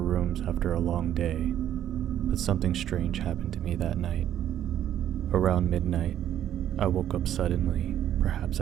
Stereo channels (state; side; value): quieter; left; 11.0 dB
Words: after a long day, but something strange happened to me that night. Around midnight, I woke up suddenly, perhaps